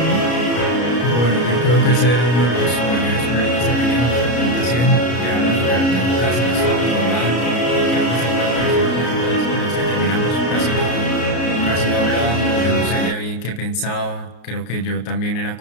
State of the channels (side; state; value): right; late; 33 ms